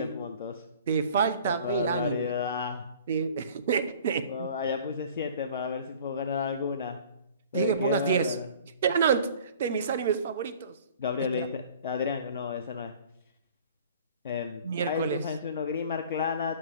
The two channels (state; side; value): inverted; both; correlation -0.48